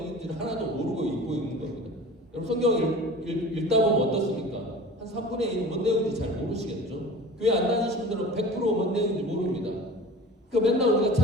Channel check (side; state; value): both; normal; correlation 0.39